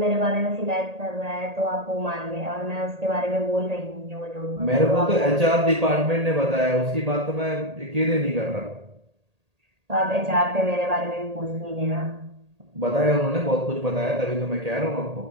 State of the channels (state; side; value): late; left; 1.8 ms